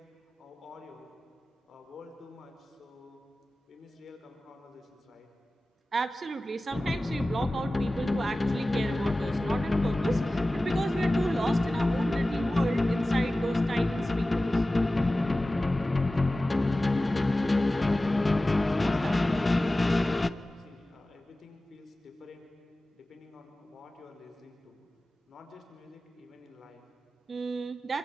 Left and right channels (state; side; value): normal; both; correlation 0.96